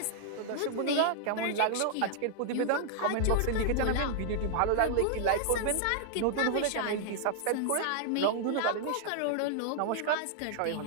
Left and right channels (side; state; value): both; different; correlation -0.01